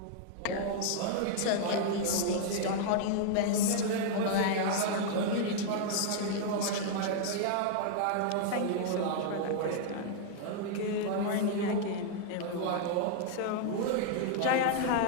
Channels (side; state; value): both; different; correlation -0.01